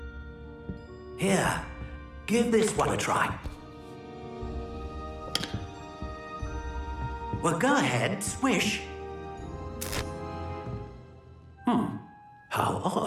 Here, give this one a try. Well, go ahead, swish. How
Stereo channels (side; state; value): both; identical; correlation 1.00